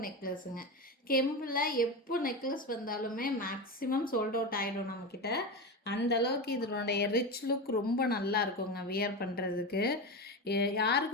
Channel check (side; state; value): both; normal; correlation 0.20